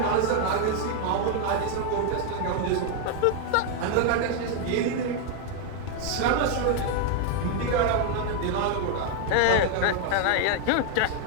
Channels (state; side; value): different; both; correlation 0.00